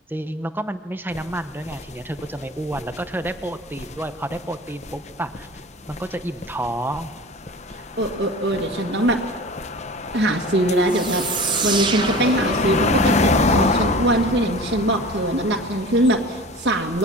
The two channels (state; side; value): normal; both; correlation 0.38